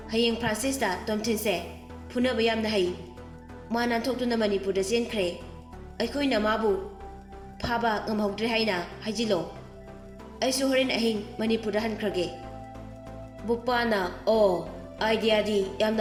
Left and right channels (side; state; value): both; identical; correlation 1.00